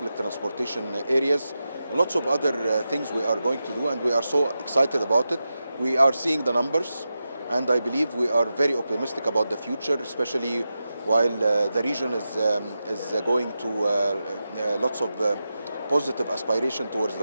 transportation areas. Lots of other things we are going to do, and we are so excited about it. We are seeing the numbers, and I believe we are very optimistic about the future, especially while the region is going to lots of positive aspiration towards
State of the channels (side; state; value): both; inverted; correlation -0.91